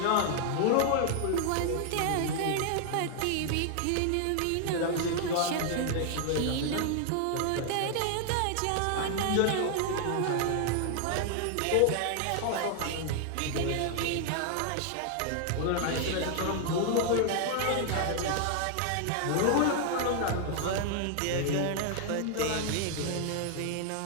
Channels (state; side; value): different; both; correlation 0.00